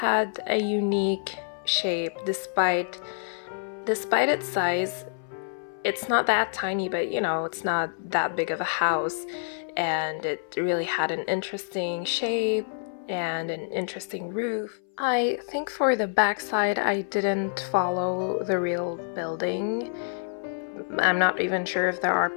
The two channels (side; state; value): right; silent; 58 dB below the other